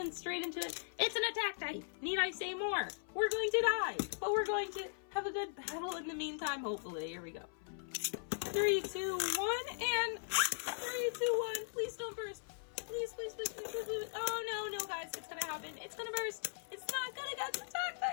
straight into it. It's an attack type. Need I say more? We're going to die, but we're going to have a good battle in the meantime, hopefully. Here we go. 3, 2, 1, and 3, 2, 1. Please don't burst. Please, please, please, please, please, please. Oh, no, guys. It's going to happen. It's going to burst. It's not going to get the attack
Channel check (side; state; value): right; silent; 52 dB below the other